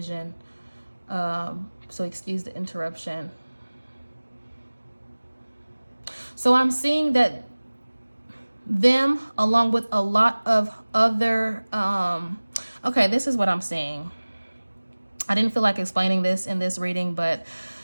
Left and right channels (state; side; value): inverted; both; correlation -1.00